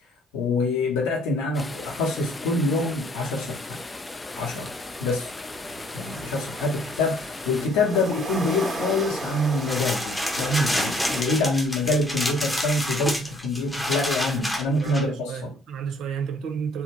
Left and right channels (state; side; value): normal; both; correlation 0.60